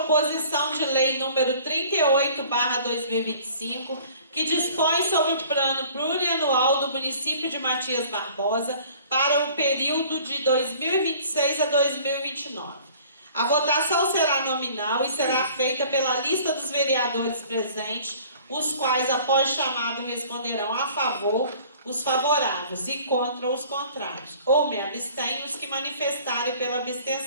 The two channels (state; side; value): inverted; both; correlation -0.51